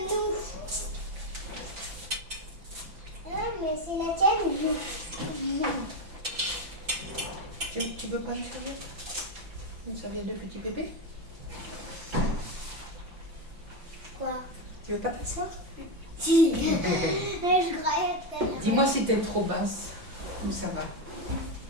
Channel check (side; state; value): left; late; 5.9 ms